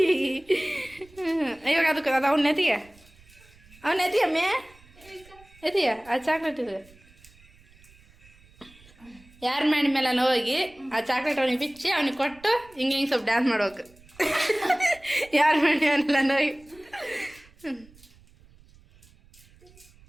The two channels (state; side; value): noise; right; rumble, 27 dB below the sound